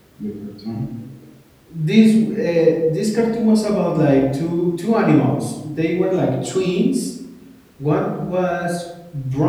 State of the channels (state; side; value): identical; both; correlation 1.00